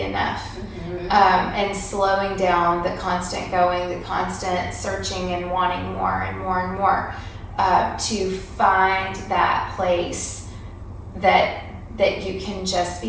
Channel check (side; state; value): both; identical; correlation 1.00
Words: enough. And slowing down the constant going, the constant searching and wanting more and more and more, to find that place that you can just